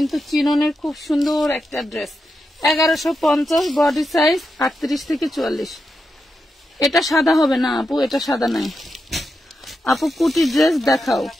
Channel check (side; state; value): both; normal; correlation 0.87